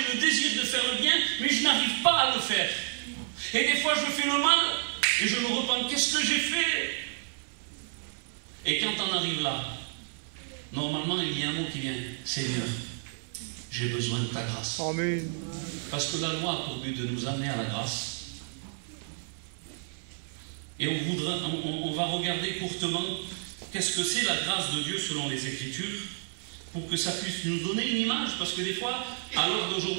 le désir de faire le bien, mais je n'arrive pas à le faire. Et des fois, je fais le mal, et je me repens, qu'est-ce que j'ai fait? Et quand on arrive là, normalement, il y a un mot qui vient, Seigneur, j'ai besoin de ta grâce. Amen. Parce que la loi a pour but de nous amener à la grâce. Et on va regarder courtement qu'est-ce que c'est la grâce de Dieu selon les Écritures, pour que ça puisse nous donner une image, parce que des fois, à l'heure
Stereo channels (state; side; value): silent; left; 58 dB below the other